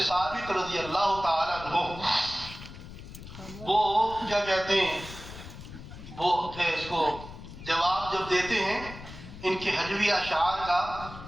ثابت رضی اللہ تعالیٰ عنہ وہ کیا کہتے ہیں، وہ اس کو جواب جب دیتے ہیں ان کے حجوی اشعار کا،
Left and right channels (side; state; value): left; noise; rumble, 14 dB below the sound